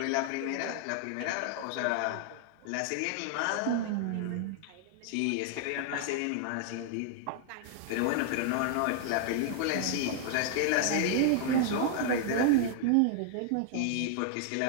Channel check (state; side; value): different; both; correlation 0.00